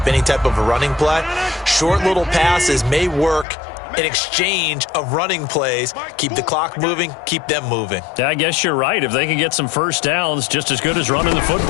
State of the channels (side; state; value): right; drops out; at 3.5 s